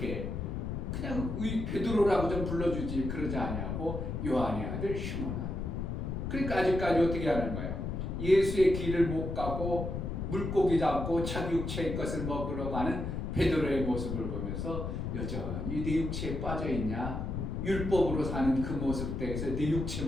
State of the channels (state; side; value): noise; left; rumble, 3 dB below the sound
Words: 그냥 베드로라고 좀 불러주지 그러지 않냐고 요한의 아들 시모나. 그러니까 아직까지 어떻게 하는 거예요? 예수의 길을 못 가고 물고기 잡고 자기 육체의 것을 먹으러 가는 베드로의 모습을 보면서 여전히 네 육체에 빠져있냐? 율법으로 사는 그 모습 때에서 네